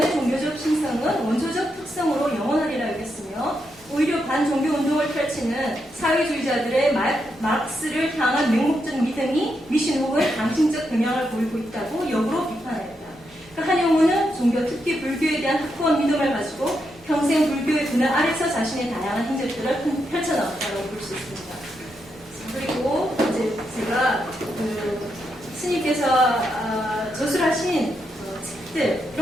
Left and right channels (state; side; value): normal; both; correlation 0.82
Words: 종교적 신성은 원초적 특성으로 영원하리라 여겼으며, 오히려 반종교 운동을 펼치는 사회주의자들의 마르크스를 향한 맹목적 믿음이 미신 혹은 강심적 경향을 보이고 있다고 역으로 비판하였다. 그러니까 한용우는 종교, 특히 불교에 대한 확고한 믿음을 가지고 평생 불교의 그늘 아래서 자신의 다양한 행적들을 펼쳐나왔다고 볼 수 있습니다. 그리고 이제 제가 스님께서 저술하신 책들,